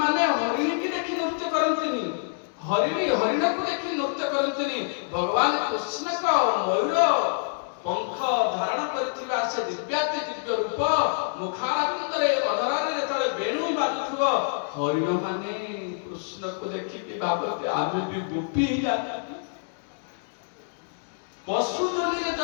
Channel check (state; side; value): silent; right; 61 dB below the other